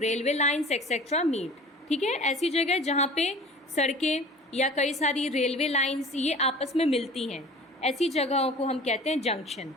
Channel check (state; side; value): normal; both; correlation 0.43